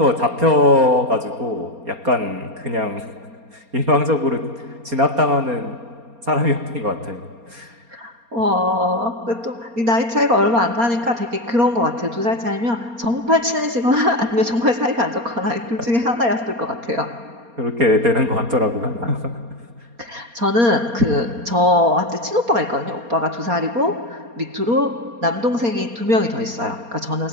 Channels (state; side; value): late; left; 4.3 ms